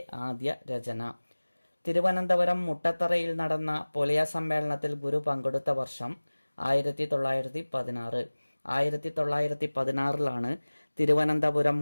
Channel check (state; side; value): inverted; both; correlation -1.00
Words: ആദ്യ രചന. തിരുവനന്തപുരം മുട്ടത്തറയിൽ നടന്ന പൊലയ സമ്മേളനത്തിൽ ഗുരു പങ്കെടുത്ത വർഷം 1916. 1916